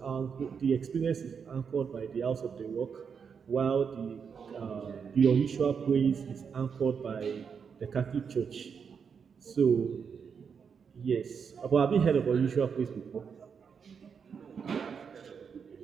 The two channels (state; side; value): quieter; left; 6.5 dB